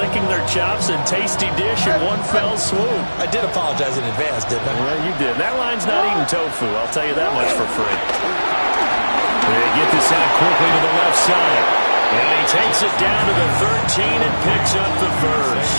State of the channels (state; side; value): inverted; both; correlation -1.00